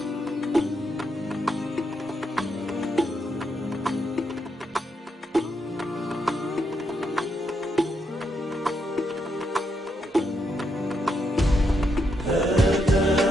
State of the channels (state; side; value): normal; both; correlation 0.80